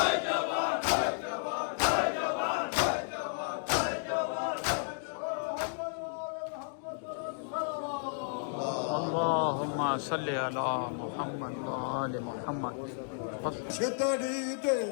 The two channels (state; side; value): silent; right; digital silence